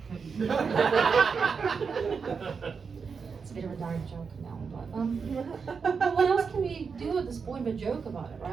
It's a bit of a dark joke now, but what else can we do at this point but joke about it,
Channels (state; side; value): quieter; left; 5.6 dB